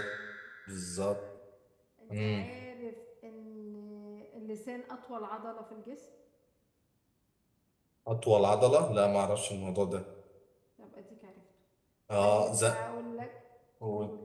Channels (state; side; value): identical; both; correlation 1.00